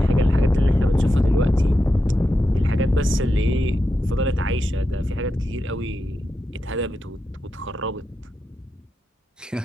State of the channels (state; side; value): normal; both; correlation 0.88